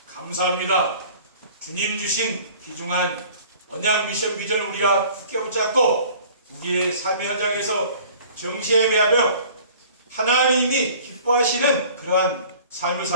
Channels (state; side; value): inverted; both; correlation -0.48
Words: 감사합니다. 주님 주신 귀중한 언약 미션 비전을 우리가 굳게 붙잡고 우리의 삶의 현장에서 정시에 매하며 하나님이 기뻐하시는 그러한 삶을